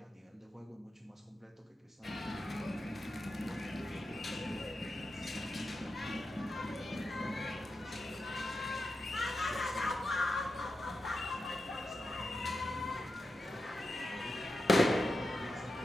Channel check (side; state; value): both; normal; correlation 0.89